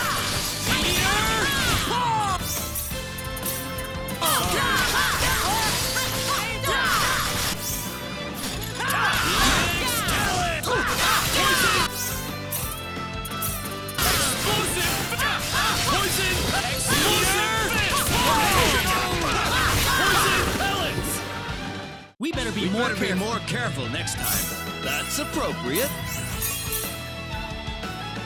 We better be more careful next time. That's appropriate.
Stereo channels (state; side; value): identical; both; correlation 1.00